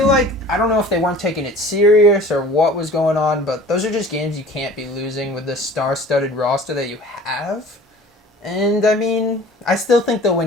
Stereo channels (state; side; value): normal; both; correlation 0.45